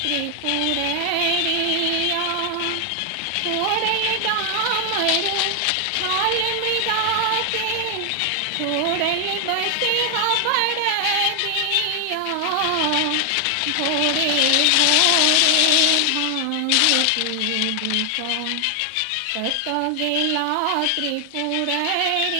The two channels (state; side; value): different; both; correlation 0.00